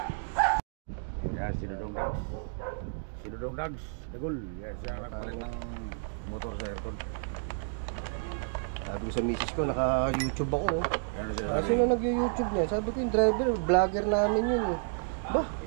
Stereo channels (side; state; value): left; silent; digital silence